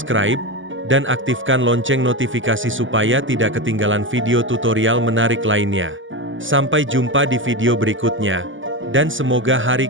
dan aktifkan lonceng notifikasi supaya tidak ketinggalan video tutorial menarik lainnya. Sampai jumpa di video berikutnya. Dan semoga hari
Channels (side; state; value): left; late; 0.56 ms